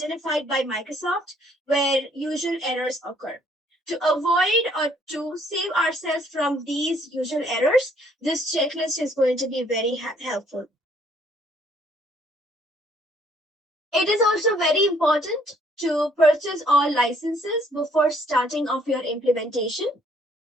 by Microsoft where usual errors occur. To avoid or to save ourselves from these usual errors, this checklist is going to be very helpful. It is also very important to purchase all licenses before starting off your implementation.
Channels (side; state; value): both; normal; correlation 0.63